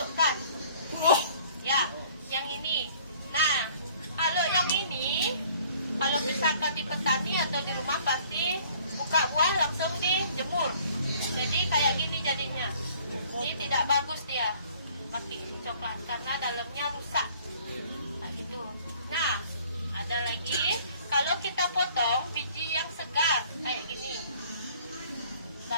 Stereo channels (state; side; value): inverted; both; correlation -0.55